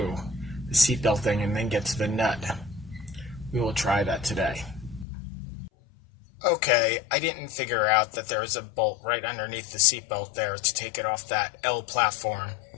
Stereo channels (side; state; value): right; drops out; at 5.1 s